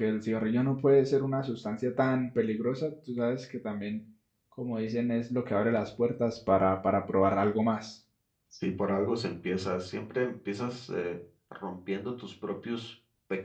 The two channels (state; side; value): identical; both; correlation 1.00